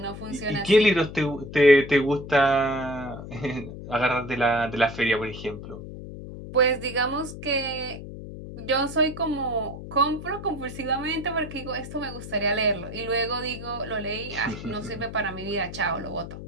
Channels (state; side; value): noise; left; hum, 11 dB below the sound